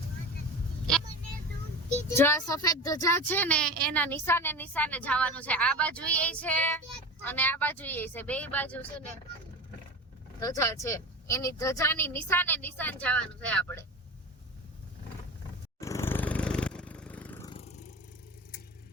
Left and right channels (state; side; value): normal; both; correlation 0.29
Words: જો આ સફેદ ધજા છે ને એના નિશાને નિશાને જવાનું છે. આ બાજુ એ છે અને આ બાજુ એ છે, બે બાજુ છે ને ધજા છે. એની ધજાની નિશાને નિશાન જવાનું છે આપણે.